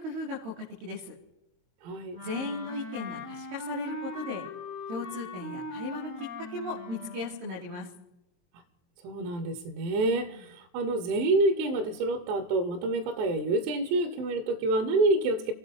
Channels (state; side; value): late; left; 22 ms